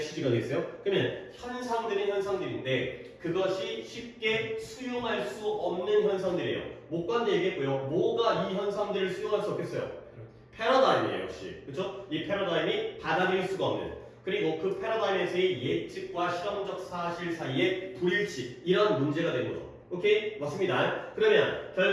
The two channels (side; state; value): both; identical; correlation 1.00